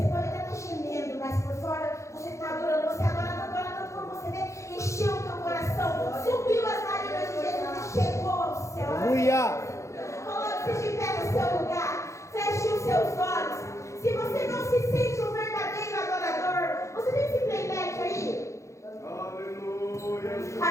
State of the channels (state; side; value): late; right; 0.14 ms